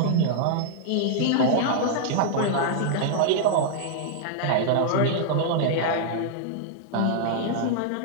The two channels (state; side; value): different; both; correlation -0.01